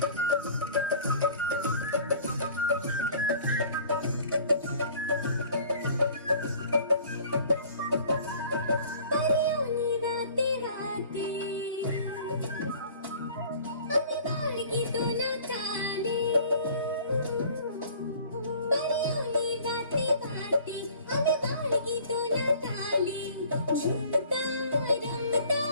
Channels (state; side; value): inverted; both; correlation -0.50